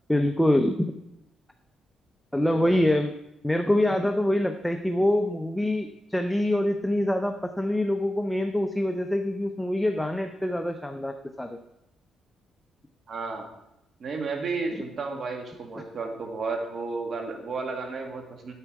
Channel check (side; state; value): both; normal; correlation 0.93